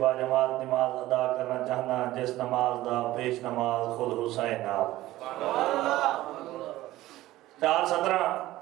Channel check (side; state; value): left; quieter; 16.2 dB